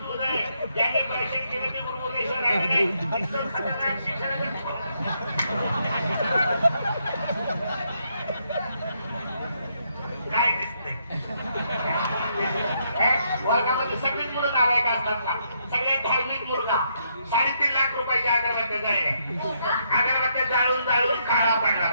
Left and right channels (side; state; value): both; inverted; correlation -0.75